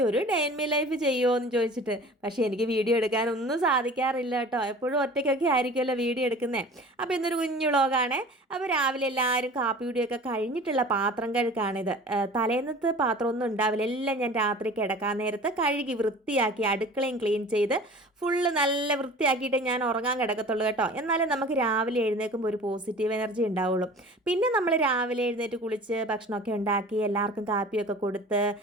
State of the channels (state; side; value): normal; both; correlation 0.42